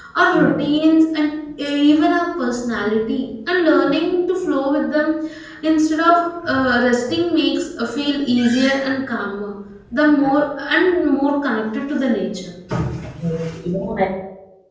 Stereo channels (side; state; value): both; identical; correlation 1.00